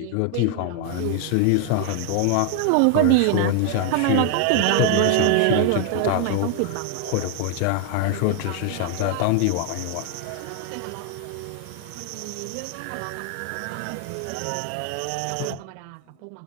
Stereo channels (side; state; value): both; different; correlation 0.00